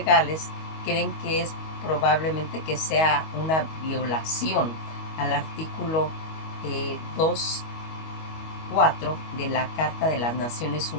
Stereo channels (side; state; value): right; late; 25 ms